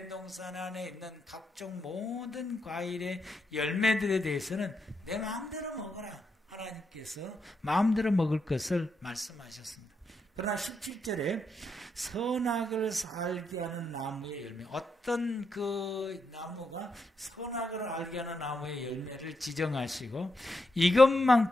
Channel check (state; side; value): normal; both; correlation 0.82